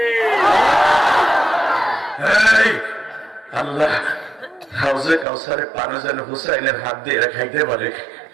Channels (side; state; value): left; drops out; at 5.2 s